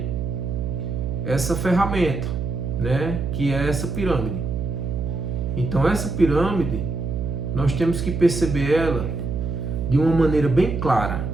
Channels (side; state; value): right; noise; hum, 3 dB below the sound